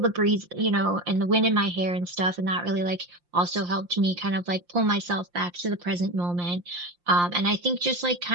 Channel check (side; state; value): left; late; 5.7 ms